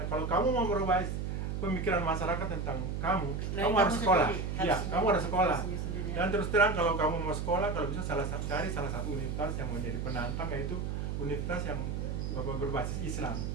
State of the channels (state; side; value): noise; right; hum, 2 dB below the sound